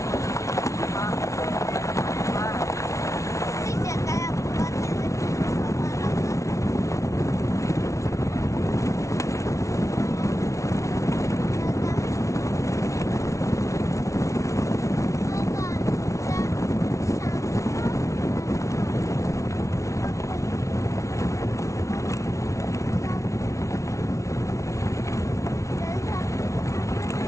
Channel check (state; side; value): late; right; 0.14 ms